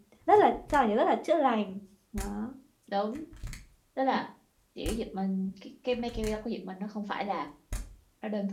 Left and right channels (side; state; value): both; identical; correlation 1.00